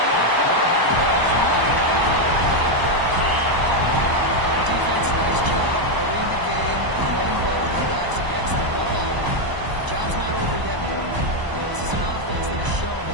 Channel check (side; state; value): left; late; 1.0 ms